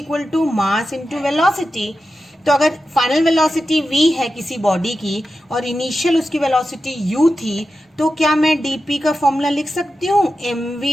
to mass into velocity. तो अगर फाइनल वेलोसिटी v है किसी बॉडी की और इनिशियल उसकी वेलोसिटी u थी, तो क्या मैं dp का फॉर्मूला लिख सकती हूँ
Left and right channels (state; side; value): normal; both; correlation 0.91